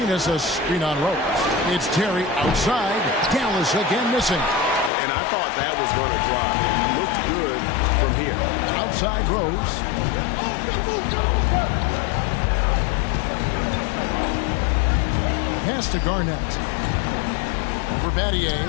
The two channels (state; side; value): drops out; right; at 4.9 s